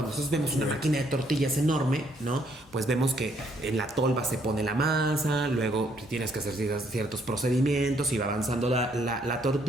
nosotros vemos una máquina de tortillas enorme, ¿no?, pues vemos que en la tolva se pone la masa, luego tienes que hacer ciertos procedimientos y va avanzando la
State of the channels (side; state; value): both; normal; correlation 0.69